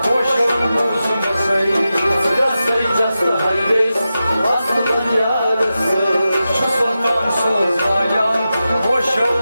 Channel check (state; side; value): inverted; both; correlation -0.92